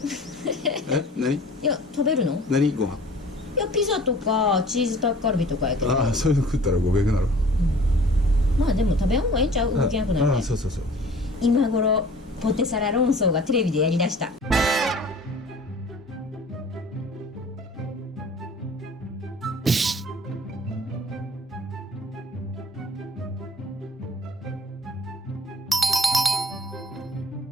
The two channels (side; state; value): both; normal; correlation 0.48